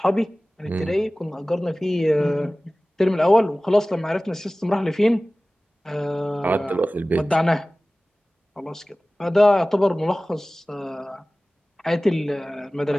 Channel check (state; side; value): normal; both; correlation 0.98